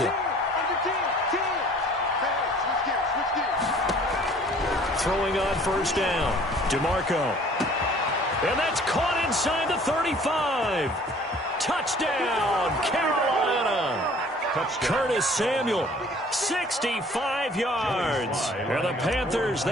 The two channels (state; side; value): normal; both; correlation 0.53